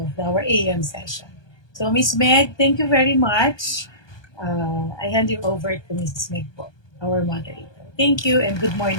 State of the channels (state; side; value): late; right; 1.2 ms